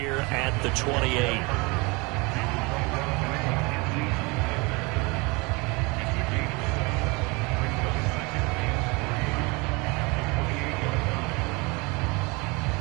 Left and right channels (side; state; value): left; quieter; 27.0 dB